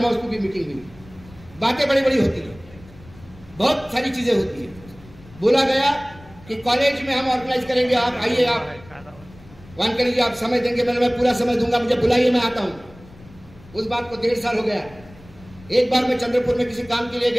हाउस की भी मीटिंग हुई। बातें बड़ी बड़ी होती है, बहुत सारी चीजें होती है। बोला गया कि कॉलेज में हम ऑर्गेनाइज करेंगे, आप आइए, आप वन करिए, आप समय देंगे। मैं पूरा समय दूंगा, मुझे बुलाइए, मैं आता हूं। उस बात को 1.5 साल हो गया। एक बार मैं चंद्रपुर में किसी काम के लिए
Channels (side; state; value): left; noise; rumble, 22 dB below the sound